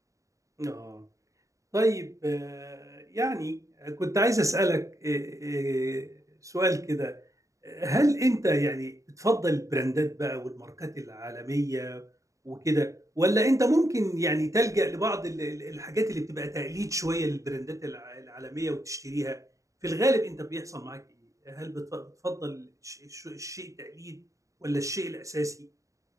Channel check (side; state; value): left; late; 0.16 ms